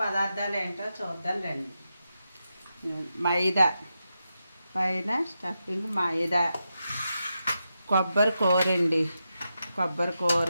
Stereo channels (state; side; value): inverted; both; correlation -0.88